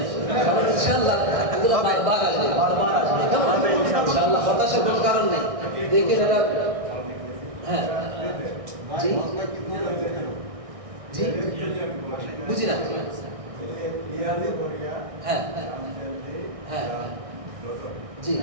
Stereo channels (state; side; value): late; left; 1.6 ms